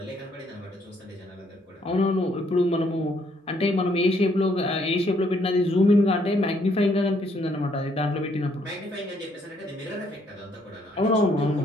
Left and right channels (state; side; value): normal; both; correlation 0.69